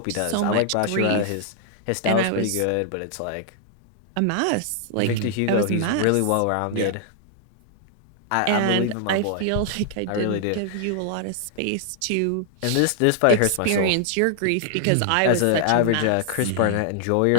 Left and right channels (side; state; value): both; different; correlation 0.00